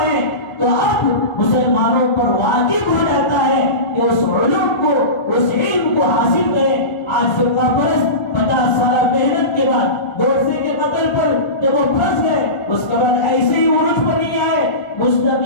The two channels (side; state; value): right; late; 1.7 ms